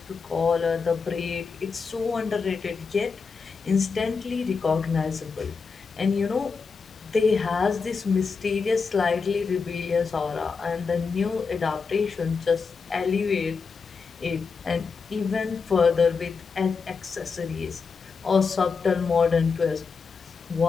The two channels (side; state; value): right; quieter; 5.1 dB